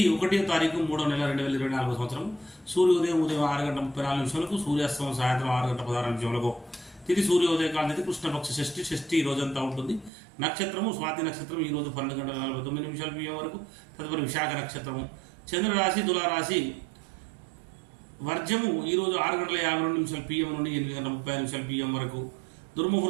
1వ తారీఖు 3వ నెల 2024 సంవత్సరం. సూర్యోదయం ఉదయం 6:34 సూర్యాస్తమం సాయంత్రం 6:16 తిది సూర్యోదయ కాల తిథి కృష్ణపక్ష షష్ఠి ఈ రోజంతా ఉంటుంది. నక్షత్రము స్వాతి నక్షత్రం ఈ రోజు 12:49 PM వరకు. తదుపరి విశాఖ నక్షత్రము. చంద్రరాశి తులారాశి. వర్జము ఈ రోజు 6:52 PM నుండి 8:30 PM వరకు.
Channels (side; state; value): left; drops out; at 10.1 s